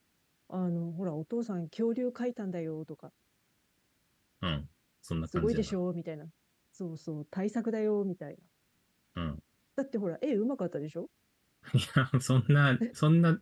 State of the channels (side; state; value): both; identical; correlation 1.00